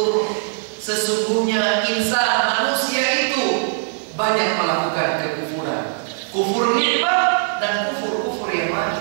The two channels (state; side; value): silent; left; 65 dB below the other